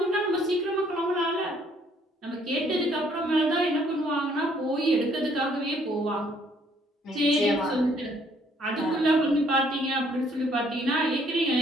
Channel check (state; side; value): normal; both; correlation 0.65